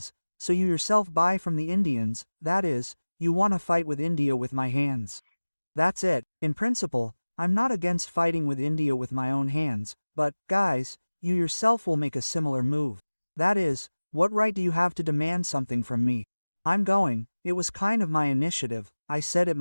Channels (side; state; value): both; inverted; correlation -1.00